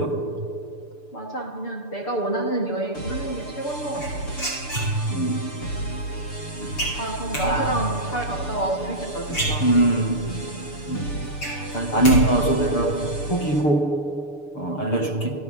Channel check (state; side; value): late; right; 6.8 ms